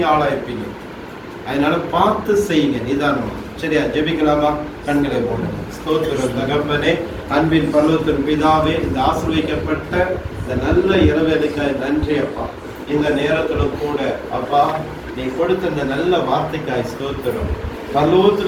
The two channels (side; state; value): both; identical; correlation 1.00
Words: ஆளாயிருப்பீங்க. அதனால பார்த்து செய்யுங்க நிதானமா. சரியா? ஜெபிக்கலாமா? கண்களை போடுங்க. ஸ்தோத்திரம் தகப்பனே, அன்பின் பரலோகத்தின் பிதாவே, இந்த ஆசீர்வதிக்கப்பட்ட இந்த நல்ல இரவேலைக்காய் நன்றி அப்பா. இந்த நேரத்துல கூட அப்பா நீ கொடுத்த இந்த நல்ல வார்த்தைக்காய் ஸ்தோத்திரம். பரலோகத்தில்